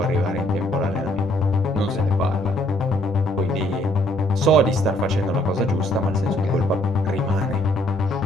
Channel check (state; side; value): normal; both; correlation 0.66